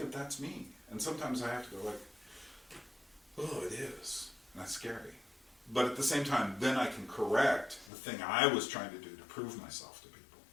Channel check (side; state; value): right; drops out; at 7.9 s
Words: that's me. And sometimes I have to go like, oh, it is. And that's scary. But at the same time, then I can correct the thing I was trying to do to prove myself to people.